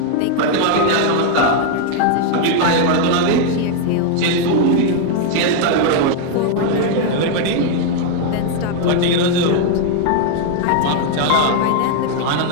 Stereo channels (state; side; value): different; both; correlation 0.00